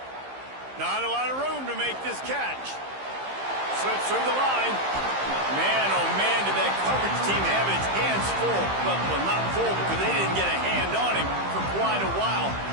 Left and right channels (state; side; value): late; left; 15 ms